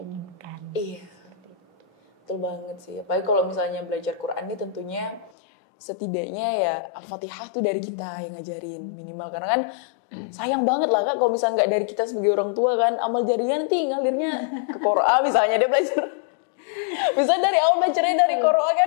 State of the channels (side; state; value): right; drops out; at 5.3 s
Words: inginkan. Iya. Betul banget sih. Apalagi kalau misalnya belajar Quran ini tentunya setidaknya ya Al-Fatihah tuh dari kita yang ngajarin minimal. Karena kan sayang banget lah Kak kalau misalnya nggak dari kita sebagai orang tua kan, amal jariah nanti ngalirnya ke Quran misalnya dia belajar. Misalnya dari awal belajarnya dari Quran